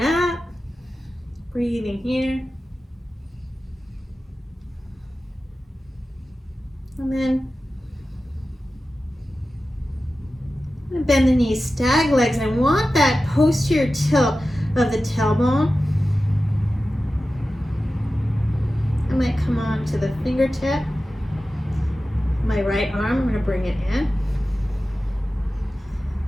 breathing here. And then I'm going to bend the knees, stag legs, and I want that posterior tilt of the tailbone. I might come on to the fingertip. My right arm, I'm going to bring it in.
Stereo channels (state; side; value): normal; both; correlation 0.94